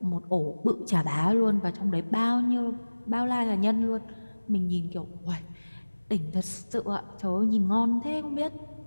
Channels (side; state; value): both; inverted; correlation -1.00